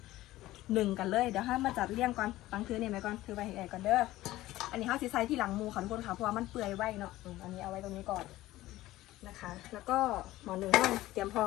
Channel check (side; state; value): right; quieter; 16.4 dB